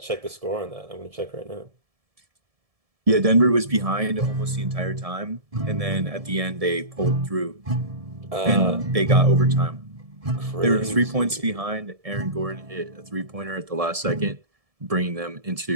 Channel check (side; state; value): left; late; 1.7 ms